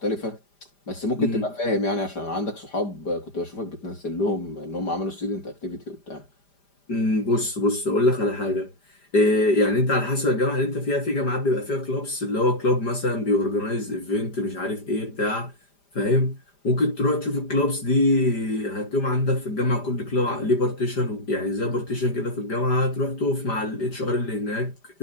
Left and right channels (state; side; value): late; right; 5.0 ms